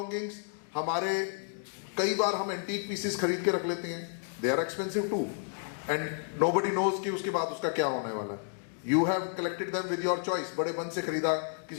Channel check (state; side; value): silent; right; digital silence